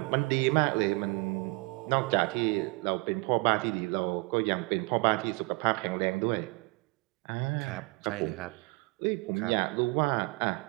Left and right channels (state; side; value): quieter; left; 27.9 dB